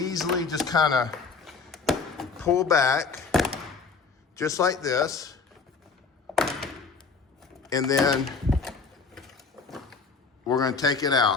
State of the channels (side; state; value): right; quieter; 4.8 dB